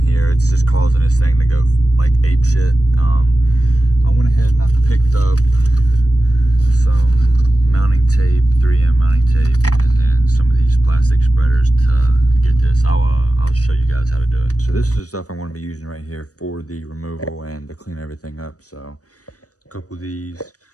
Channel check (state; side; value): late; right; 0.66 ms